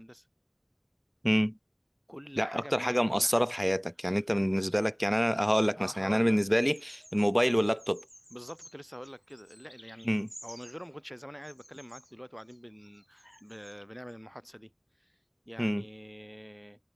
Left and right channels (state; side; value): identical; both; correlation 1.00